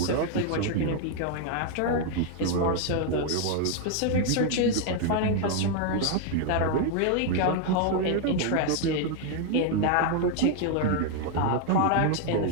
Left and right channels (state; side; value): different; both; correlation 0.00